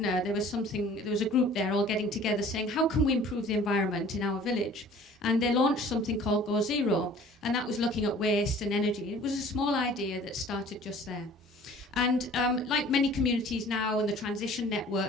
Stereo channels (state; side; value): normal; both; correlation 0.49